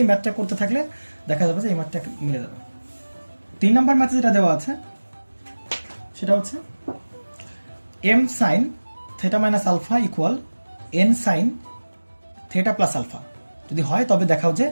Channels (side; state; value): both; inverted; correlation -1.00